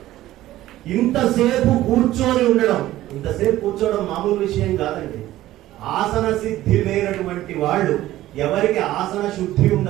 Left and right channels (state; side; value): quieter; left; 15.0 dB